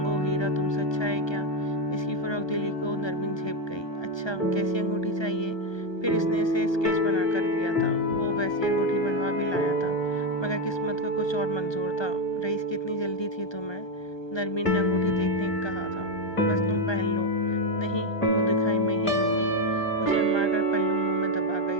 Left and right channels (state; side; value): late; right; 1.3 ms